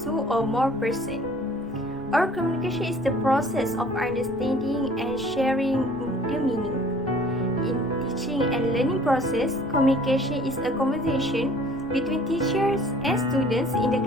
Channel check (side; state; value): right; noise; rumble, 21 dB below the sound